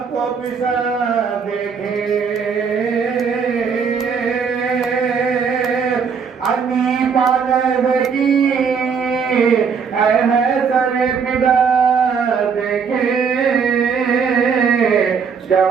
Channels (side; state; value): left; quieter; 6.2 dB